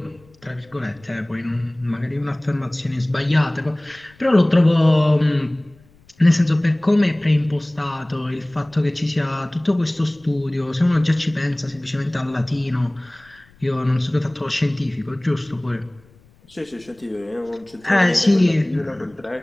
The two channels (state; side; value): noise; left; rumble, 29 dB below the sound